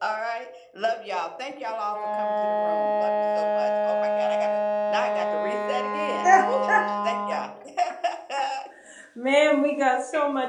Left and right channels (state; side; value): identical; both; correlation 1.00